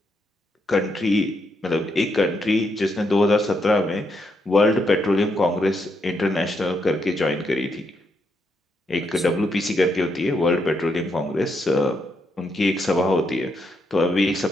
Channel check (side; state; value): both; normal; correlation 0.79